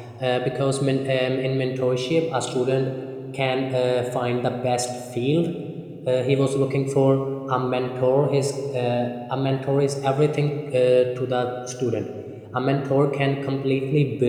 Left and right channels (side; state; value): both; identical; correlation 1.00